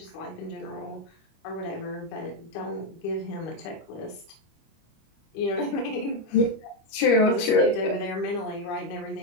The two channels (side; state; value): right; late; 25 ms